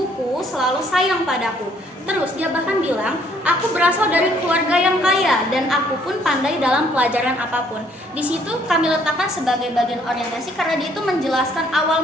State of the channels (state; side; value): normal; both; correlation 0.64